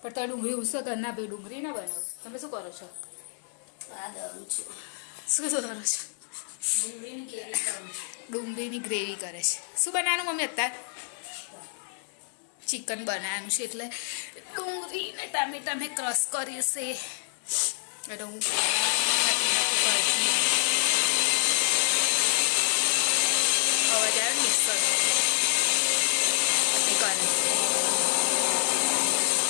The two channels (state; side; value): silent; right; digital silence